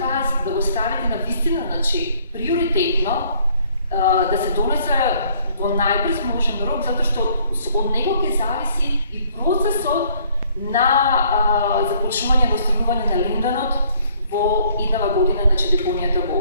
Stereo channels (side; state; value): both; inverted; correlation -0.61